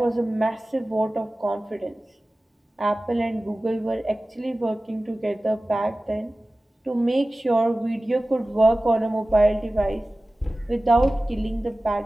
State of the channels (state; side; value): normal; both; correlation 0.97